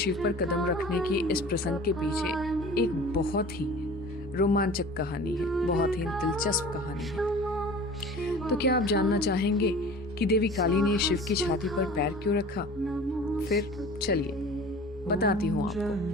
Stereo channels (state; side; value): normal; both; correlation 0.41